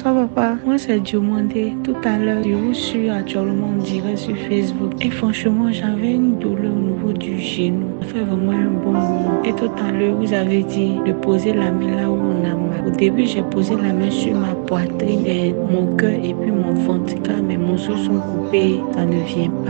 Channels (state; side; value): silent; left; 67 dB below the other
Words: papa. Moi c'est Diomandé. Tout à l'heure, je vous suis actuellement en direct sur Facebook. Et franchement, j'avais une douleur au niveau du genou. Ça fait vraiment un bon moment. Et tout à l'heure, vous avez dit de poser la main là où on a mal. Au début, j'ai posé la main sur ma poitrine, mon cœur et puis mon ventre. Car mes morceaux sont coupés, ça ne vient